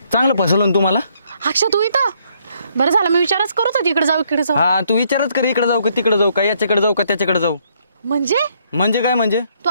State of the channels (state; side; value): inverted; both; correlation -0.69